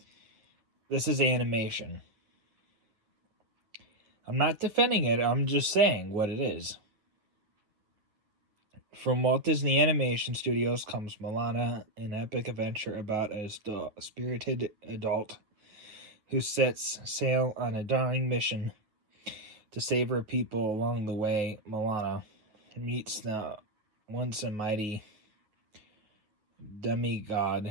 this is animation. I'm not defending it, I'm just saying what it is. From Walt Disney Animation Studios comes Moana, an epic adventure about a spirited adult who sets sail on a daring mission to save her people. Along the way, Moana meets the once a mighty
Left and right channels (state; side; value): late; left; 9.5 ms